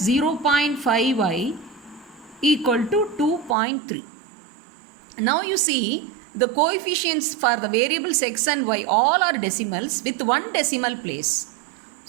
0.5y equal to 2.3. Now you see the coefficients for the variables x and y all are decimals with one decimal place.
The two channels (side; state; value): left; drops out; at 3.6 s